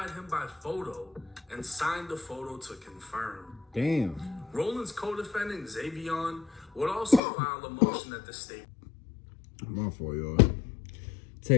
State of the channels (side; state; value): right; drops out; at 7.2 s